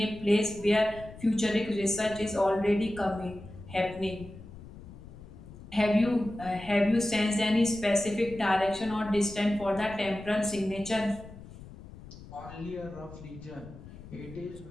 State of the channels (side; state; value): left; noise; rumble, 16 dB below the sound